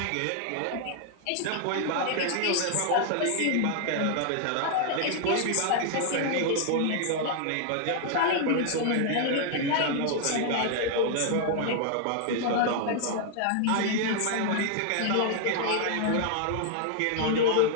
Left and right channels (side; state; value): both; different; correlation 0.00